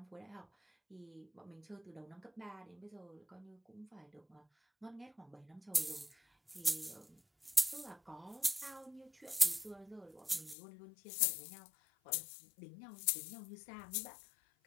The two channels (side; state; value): right; drops out; at 10.6 s